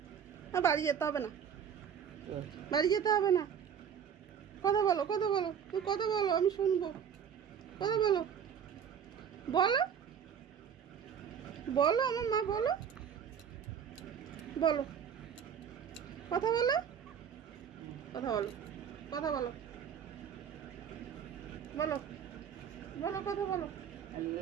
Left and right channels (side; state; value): left; quieter; 7.9 dB